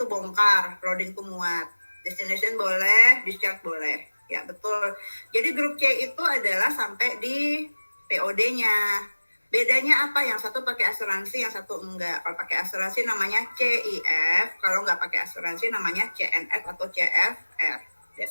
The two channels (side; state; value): both; inverted; correlation -1.00